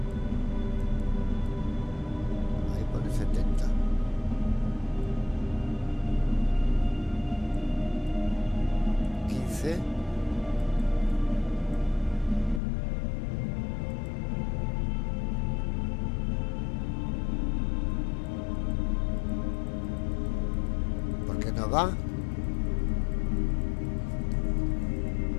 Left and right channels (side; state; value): right; drops out; at 12.6 s